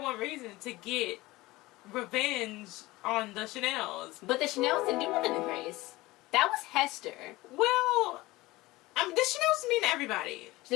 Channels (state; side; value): quieter; right; 19.7 dB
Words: reason, to get revenge on the Chanel's. But the Chanel's didn't do nothing to Grace. That was Hester. Well, the Chanel's mean to everybody.